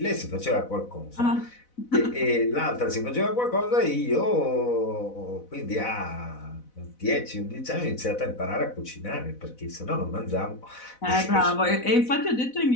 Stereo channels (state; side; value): late; right; 4.0 ms